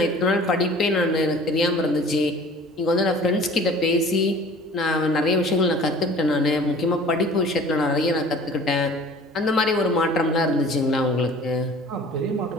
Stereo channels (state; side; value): normal; both; correlation 0.46